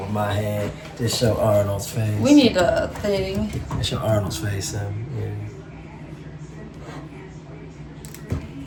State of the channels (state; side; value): identical; both; correlation 1.00